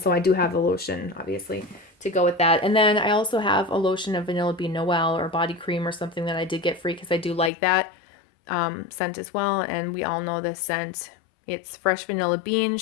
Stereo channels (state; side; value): drops out; right; at 7.5 s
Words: I do have the lotion, obviously, to go with that. And then I also have a lotion of vanilla bean Noel or body cream or something that I did get free because I do like that scent as well. And we all know this scent. It's fresh vanilla bean,